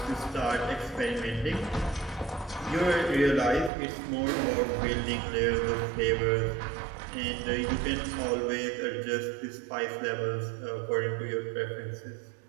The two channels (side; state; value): left; drops out; at 3.7 s